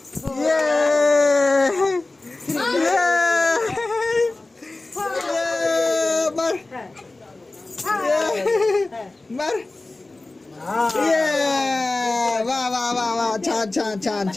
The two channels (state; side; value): quieter; right; 3.1 dB